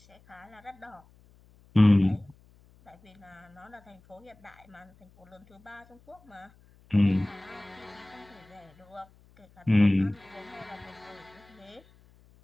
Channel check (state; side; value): noise; left; hum, 28 dB below the sound